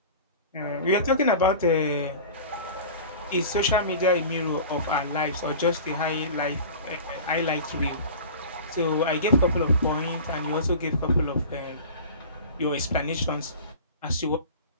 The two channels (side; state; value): both; inverted; correlation -0.37